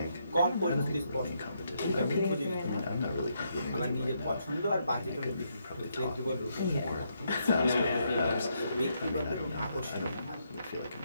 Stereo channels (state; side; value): inverted; both; correlation -0.77